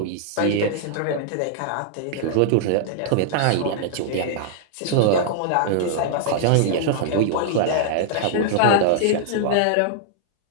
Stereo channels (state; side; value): different; both; correlation -0.01